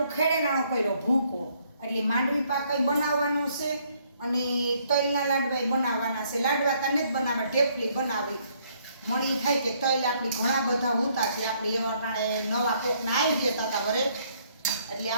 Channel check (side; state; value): both; inverted; correlation -0.67